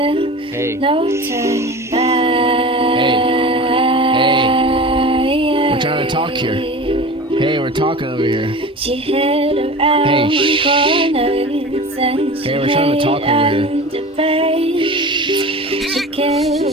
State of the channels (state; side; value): normal; both; correlation 0.35